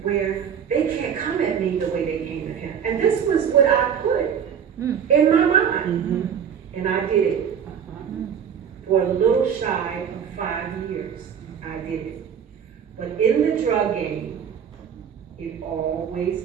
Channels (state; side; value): quieter; left; 7.8 dB